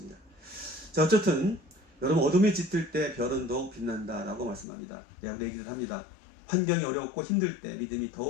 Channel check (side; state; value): right; drops out; at 4.7 s